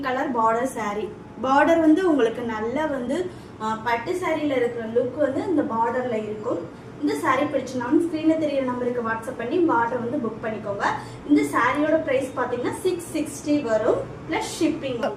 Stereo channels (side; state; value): both; identical; correlation 1.00